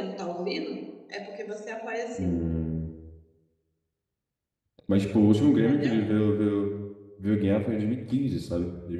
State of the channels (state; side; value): identical; both; correlation 1.00